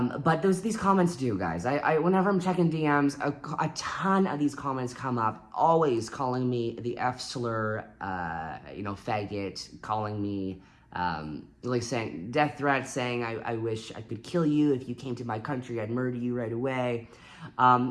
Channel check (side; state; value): both; identical; correlation 1.00